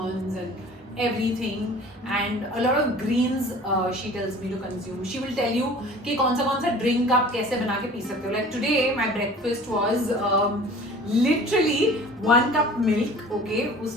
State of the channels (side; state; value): both; normal; correlation 0.45